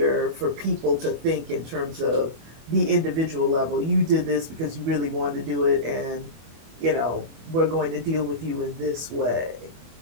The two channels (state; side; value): late; left; 25 ms